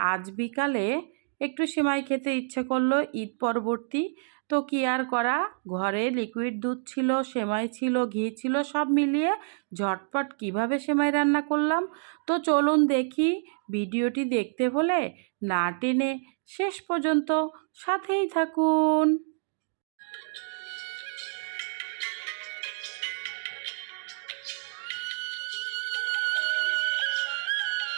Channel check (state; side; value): silent; left; digital silence